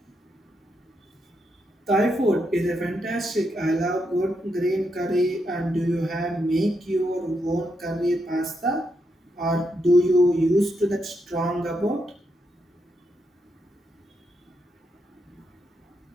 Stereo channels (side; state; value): both; normal; correlation 0.81